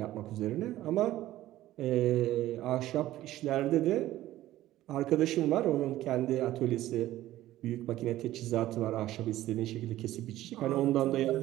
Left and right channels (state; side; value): quieter; left; 14.8 dB